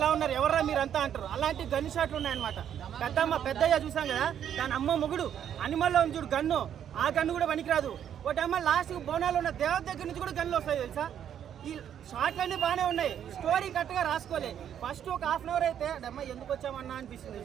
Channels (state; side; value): quieter; left; 9.4 dB